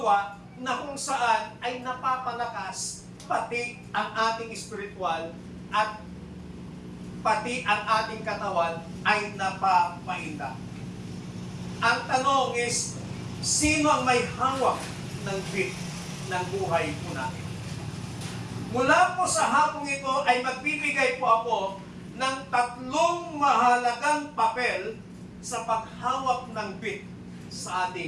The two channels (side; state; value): both; identical; correlation 1.00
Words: na kung saan ay napapalakas pati ang ating spiritual at pati ang ating katawan ay napapainda. Ang tanong is, sino ang may hawak ng beat ng buhay po natin? Mula po sa hapong ito ay magbibigay po ako ng 3 mahalagang papel sa paghawak ng beat sa